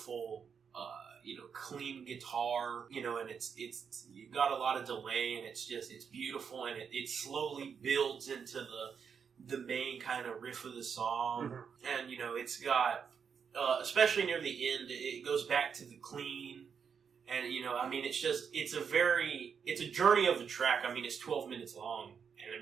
clean guitar, and it's you got a lot of delay, and it's beautiful, and it slowly builds into the main kind of riff of the song, and it's got especially near the end, it goes back to the clean. And, it's a journey of the track. I mean, it's 12 minutes long. And, I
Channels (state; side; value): quieter; left; 6.7 dB